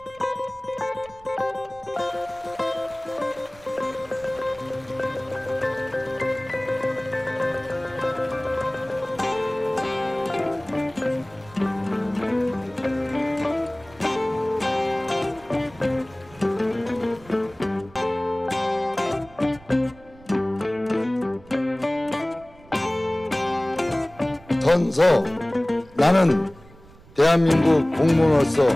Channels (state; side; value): noise; right; rumble, 23 dB below the sound